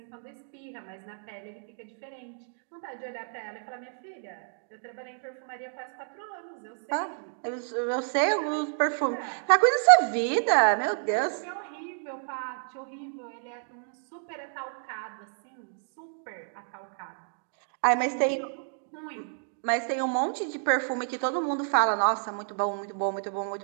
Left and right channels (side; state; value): left; silent; digital silence